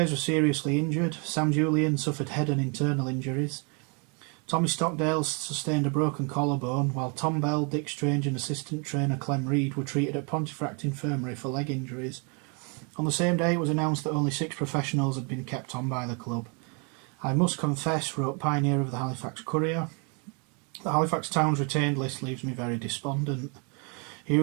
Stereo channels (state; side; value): quieter; left; 35.3 dB